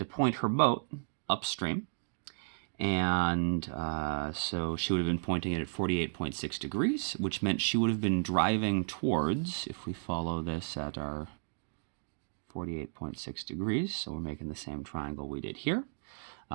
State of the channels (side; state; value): left; silent; digital silence